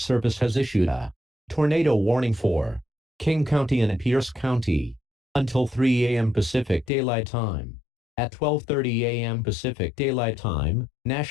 has issued a tornado warning for King County and Pierce County until 3 a.m. Pacific Daylight Time. At 12:30 a.m. Pacific Daylight Time,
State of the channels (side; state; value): right; drops out; at 6.9 s